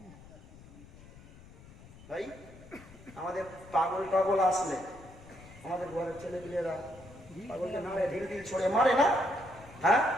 ভাই আমাদের পাগল টাগল আসলে আমাদের ঘরের ছেলেপিলেরা পাগলকে নামে ঢিল ঢিল ছড়ে মারে না? হ্যাঁ,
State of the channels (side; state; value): left; noise; rumble, 20 dB below the sound